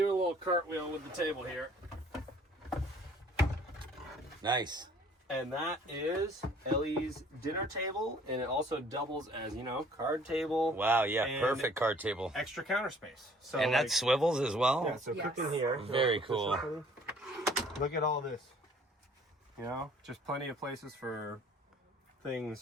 a little cartwheel with the table here. Nice. And that is Ellie's dinner table, and it also doubles as, card table. Wow, yeah, perfect card table. Extra counter space. So and that swivels as well? Yeah, so cooking here. Very cool. Look at all this. Just plenty of places for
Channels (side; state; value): both; normal; correlation 0.55